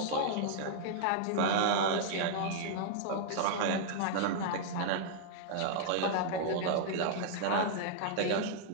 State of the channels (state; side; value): different; both; correlation -0.01